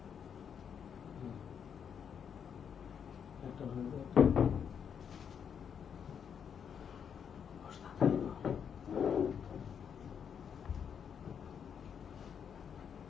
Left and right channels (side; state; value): right; quieter; 7.6 dB